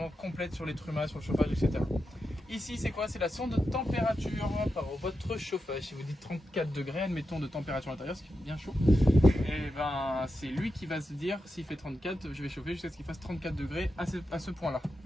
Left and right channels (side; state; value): both; normal; correlation 0.89